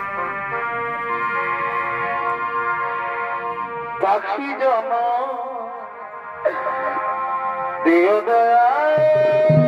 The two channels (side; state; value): both; identical; correlation 1.00